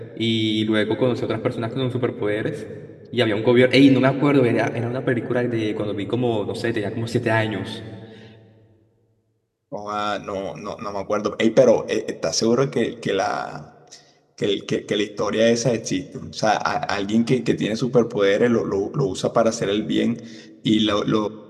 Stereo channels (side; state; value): both; identical; correlation 1.00